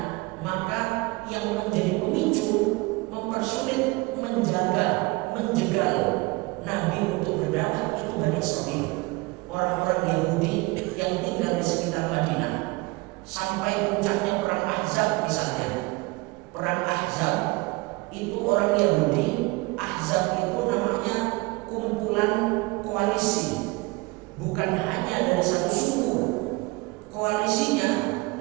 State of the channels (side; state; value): left; quieter; 24.2 dB